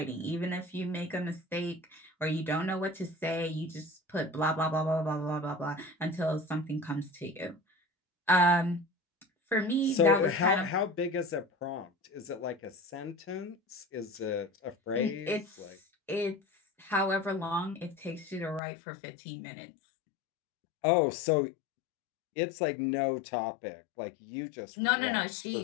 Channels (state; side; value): drops out; right; at 18.6 s